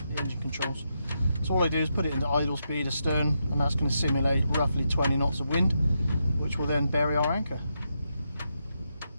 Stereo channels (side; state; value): both; inverted; correlation -0.84